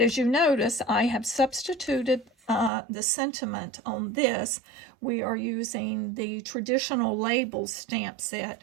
as you notice, I have substituted the sentiment on this. We are using the traditional labels stamp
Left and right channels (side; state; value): left; drops out; at 2.7 s